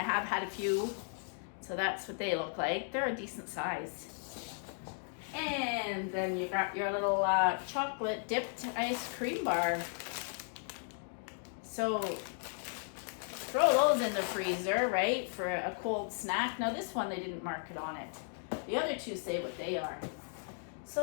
have had a few. So that's what they look like. They're a decent size. And then you got your little chocolate dipped ice cream bar. So throw those in the freezer, right, for a cold snack. Now this one, they didn't mark it on it. The other two say what they are.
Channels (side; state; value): right; silent; 54 dB below the other